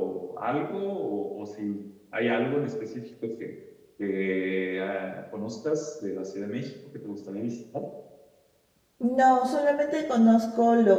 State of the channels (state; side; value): identical; both; correlation 1.00